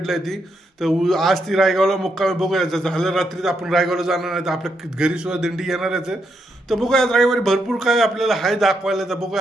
आहे ती, तर आज ती रायगावला मुक्कामी बघूया। झालं रात्री आपण रायगावला जाणार आहे, तर आपल्या घरी सुद्धा दिंडी येणारच आहे। तर बघूया आज रविवारी भरपूर काय आपल्याला हाय दाखवायला, तर बघूया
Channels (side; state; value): both; normal; correlation 0.80